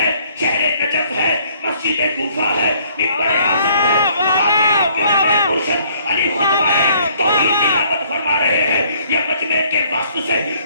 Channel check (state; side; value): inverted; both; correlation -0.62